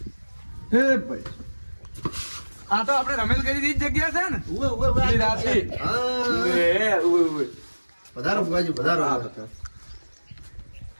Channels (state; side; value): inverted; both; correlation -1.00